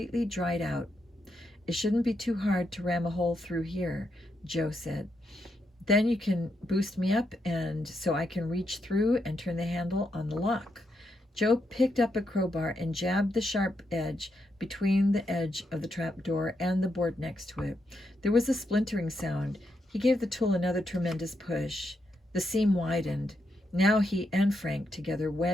dried out. "It shouldn't be too hard to ram a hole through here," Joe said. "Then you can boost me up and so I can reach through and turn the handle on the lock." Joe picked up a crowbar and jabbed the sharp edge between the edge of the trapdoor and the board next to it. There was a splintering sound. He gave the tool another tremendous push. The seam widened. Now he and Frank together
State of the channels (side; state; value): both; normal; correlation 0.82